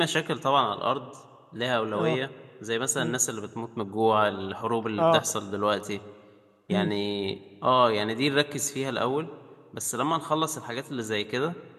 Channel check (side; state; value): both; identical; correlation 1.00